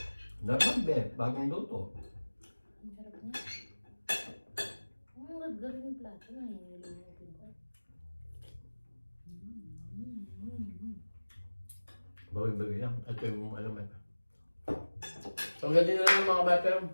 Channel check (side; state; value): both; inverted; correlation -1.00